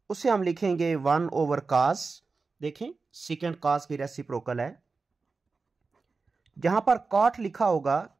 उसे हम लिखेंगे 1 ओवर कास। देखें सीकेंट कास की रेसिप्रोकल है। जहां पर कॉट लिखा होगा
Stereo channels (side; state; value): left; quieter; 4.3 dB